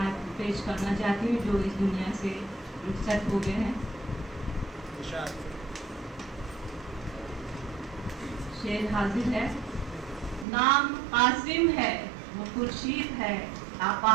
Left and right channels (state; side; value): drops out; left; at 10.5 s